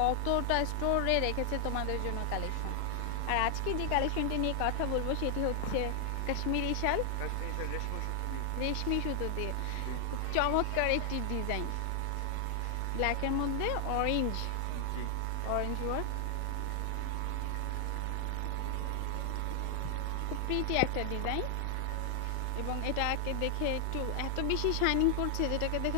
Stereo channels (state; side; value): different; both; correlation 0.00